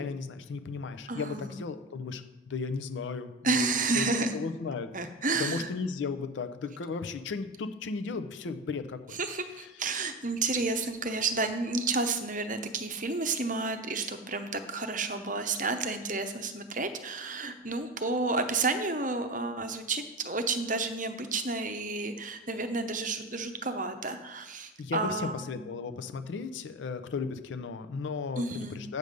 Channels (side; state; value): both; normal; correlation 0.24